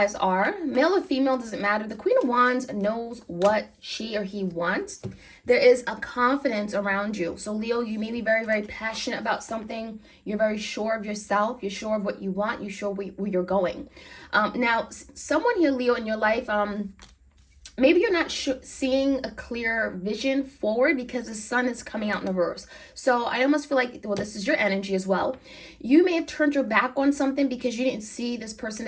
are. Male or female, doesn't matter. The Queen of Wands knows what she or he wants. There is a confidence around you. So Leo, you may be very, very passionate about something. You're very sure of yourself. You're sure of what you want. You're sure where you're going. Now, someone here, Leo, in your life, maybe you're not seeing a clear vision forward because the sun is coming out in reverse. So I almost feel like, well, this is your energy as well. You may have turned your back on something because you didn't see this person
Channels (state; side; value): identical; both; correlation 1.00